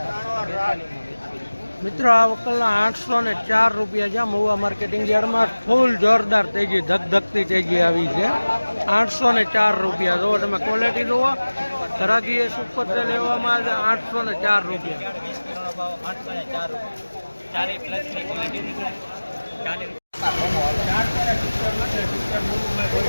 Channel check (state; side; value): inverted; both; correlation -1.00